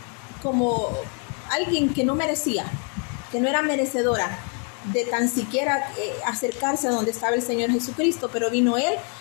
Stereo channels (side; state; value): right; quieter; 38.1 dB